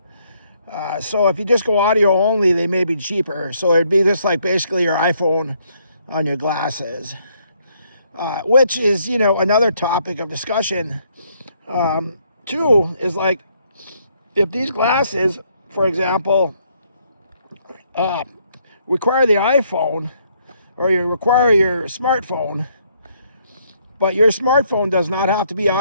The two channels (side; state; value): both; inverted; correlation -0.70